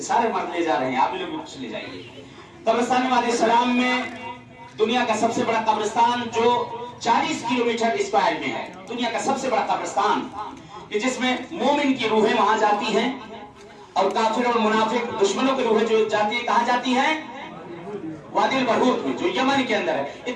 सारे मर्द ले जा रहे हैं, आप लोग भी कुछ ले जाइए। कब्रिस्तान वादी सलाम में दुनिया का सबसे बड़ा कब्रिस्तान जो 40 किलोमीटर स्क्वायर में है, दुनिया का सबसे बड़ा कब्रिस्तान कि जिसमें मोमिन की रूहें वहां जाती हैं और काफिर और मुनाफिक दुश्मनों की रूहें जो जाती है, कहां जाती हैं? वादिल बरूत में, जो यमन के अंदर है।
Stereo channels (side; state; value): both; identical; correlation 1.00